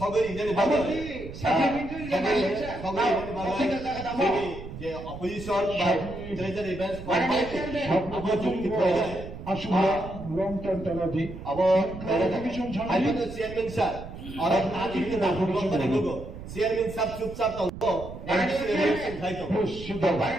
जेने बाबो जे अपोजिशन बा ट्रेजरी बेंच अब जुक्ति प्रयोग আসলে লং টার্ম তালাদি अब आइनो चेयरमैन सर और आदि के नाम करे गो चेयरमैन साहब चुपचाप तो इलेक्शन खाइ तो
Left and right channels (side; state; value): right; noise; rumble, 12 dB below the sound